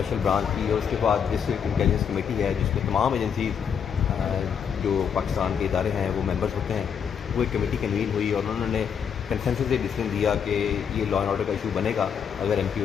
برانچ کی، اور اس کے بعد ڈسٹرکٹ انٹیلیجنس کمیٹی ہے جس میں تمام ایجنسیز جو پاکستان کے ادارے ہیں وہ ممبرس ہوتے ہیں، وہ ایک کمیٹی کنوین ہوئی اور انہوں نے کنسنسس سے ڈیسیژن دیا کہ یہ لا اینڈ آرڈر کا ایشو بنے گا اگر ایم پی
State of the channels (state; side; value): quieter; right; 7.4 dB